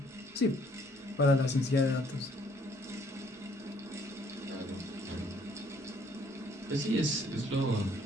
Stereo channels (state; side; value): normal; both; correlation 0.62